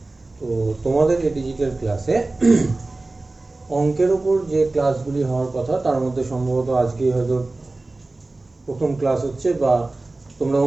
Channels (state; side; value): quieter; left; 3.1 dB